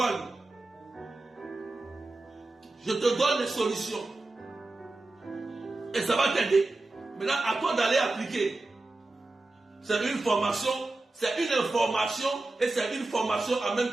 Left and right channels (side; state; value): left; quieter; 3.0 dB